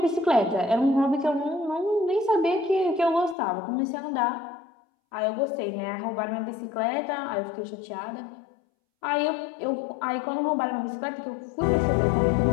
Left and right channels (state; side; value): drops out; right; at 3.4 s